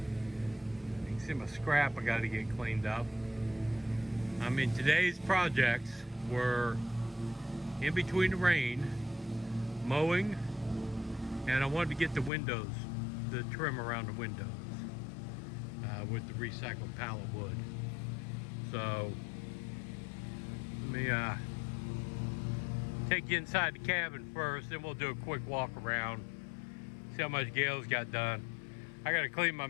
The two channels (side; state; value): right; drops out; at 12.3 s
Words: can see my scrap I got to get cleaned up. I mean, today's projects were in between the rain, mowing, and I wanted to get the windows, the trim around the windows with the recycled pallet wood. So let me take you inside the cabin first, then we'll do a quick walk around, see how much Gail's got done. I got to clean my